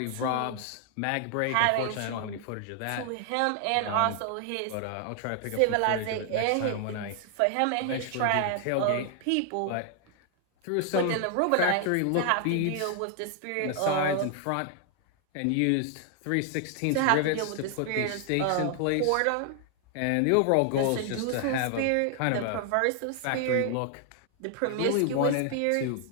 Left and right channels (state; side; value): different; both; correlation 0.00